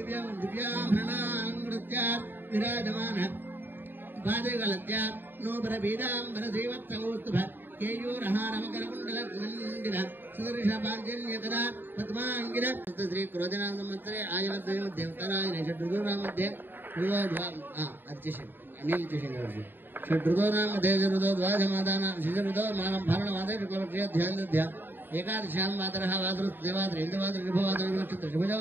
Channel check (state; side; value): late; left; 0.095 ms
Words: विराजमान पादगलत्य नोबर बीजाम्बर श्रीवत्सकौस्तुभ केयूरहारमकरकुण्डलमण्डिल सुदर्शपाञ्जन्यकदा पद्माङ्गिर श्री क्रोधनाम संवत्सरे आयुर्द्वय मध्ये उत्तरायणे षड्ऋतूनां मध्ये षड्ऋतूनां मध्ये ऋतोद्वाजमादानां शिशऋतो मानं फालनमादे शुक्लपक्षे ध्यानदध्या एकादशां मातरः वासुदेवात्र इन्द्रवात्र शुभवात्र नक्षत्र शुभजो